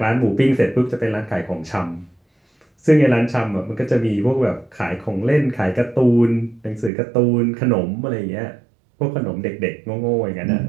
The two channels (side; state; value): left; drops out; at 6.9 s